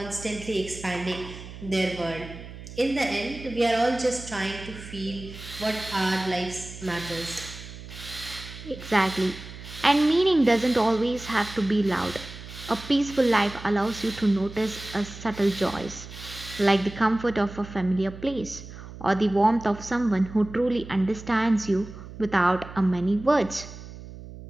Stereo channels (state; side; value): noise; right; hum, 14 dB below the sound